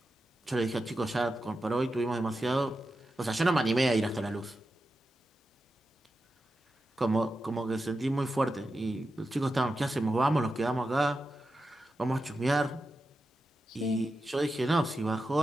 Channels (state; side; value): normal; both; correlation 0.90